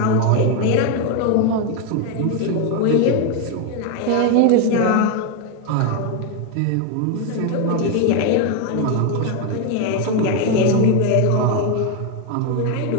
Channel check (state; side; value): different; both; correlation 0.01